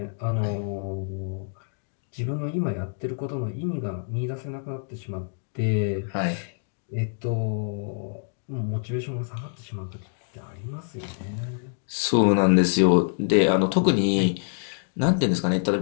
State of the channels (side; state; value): right; silent; digital silence